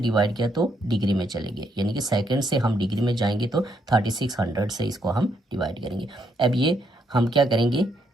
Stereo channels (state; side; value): normal; both; correlation 0.75